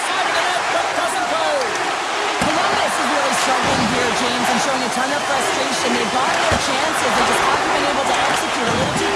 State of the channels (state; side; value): identical; both; correlation 1.00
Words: of the net, but doesn't go. Columbus is really struggling here, James, and showing a ton of frustration. They've got their chances. They just haven't been able to execute a little too